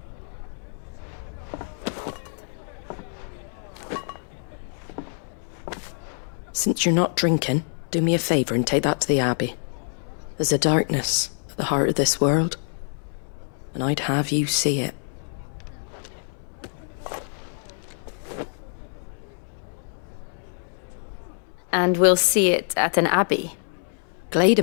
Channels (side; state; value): right; silent; digital silence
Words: Since you're not drinking, do me a favour and take that to the Abbey. There's a darkness at the heart of this world, and I'd have you see it. And we'll see it at an abbey?